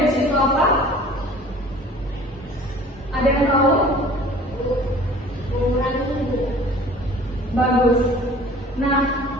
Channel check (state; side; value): normal; both; correlation 0.47